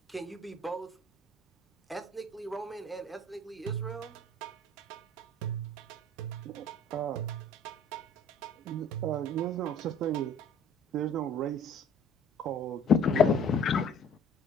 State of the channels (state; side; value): normal; both; correlation 0.52